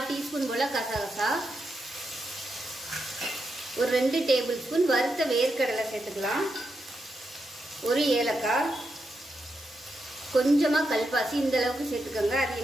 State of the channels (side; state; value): both; normal; correlation 0.85